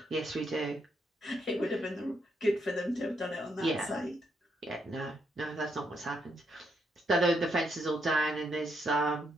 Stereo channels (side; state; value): both; normal; correlation 0.78